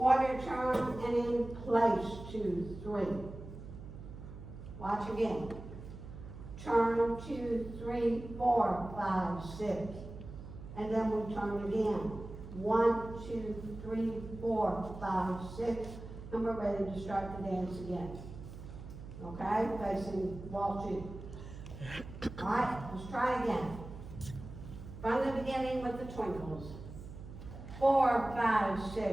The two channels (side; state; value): right; noise; hum, 12 dB below the sound